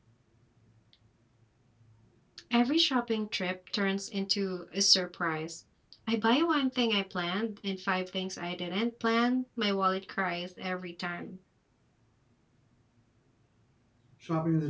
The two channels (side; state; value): both; identical; correlation 1.00